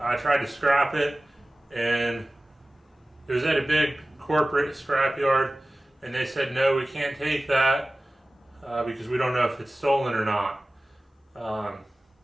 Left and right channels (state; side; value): normal; both; correlation 0.96